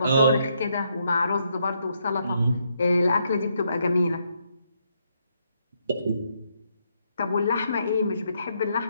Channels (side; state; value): both; inverted; correlation -0.75